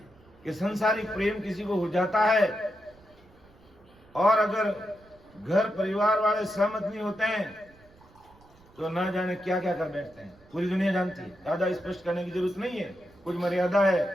कि संसारिक प्रेम किसी को हो जाता है, और अगर घर परिवार वाले सहमत नहीं होते हैं तो ना जाने क्या क्या कर बैठते हैं। पूरी दुनिया जानती है, ज्यादा स्पष्ट करने की जरूरत नहीं है, कुछ मर्यादा है।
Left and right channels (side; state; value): right; noise; rumble, 27 dB below the sound